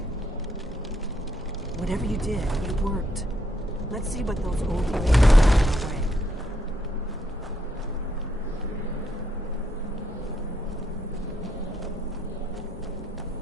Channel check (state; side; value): normal; both; correlation 0.76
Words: Whatever you did, it worked. Let's see what those old blades are away.